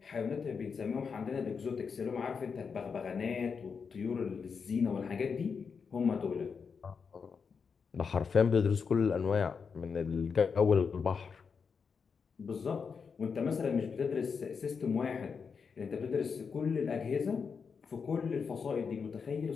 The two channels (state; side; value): quieter; right; 5.8 dB